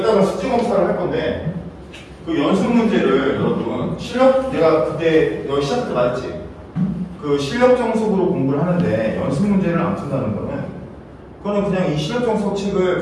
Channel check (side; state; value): both; identical; correlation 1.00